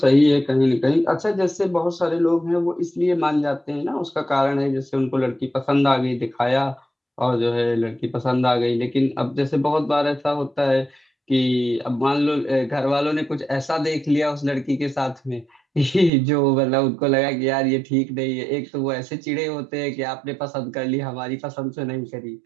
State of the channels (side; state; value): left; drops out; at 16.1 s